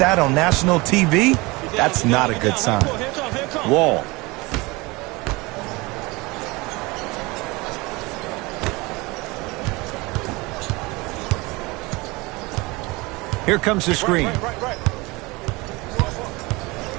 on national TV. That's not a good sign. Wall. Here comes the screen.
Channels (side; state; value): left; quieter; 23.8 dB